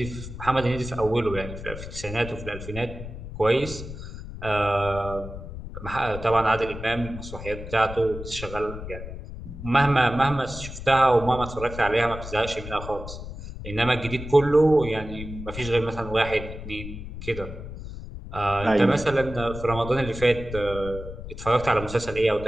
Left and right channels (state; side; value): noise; left; rumble, 10 dB below the sound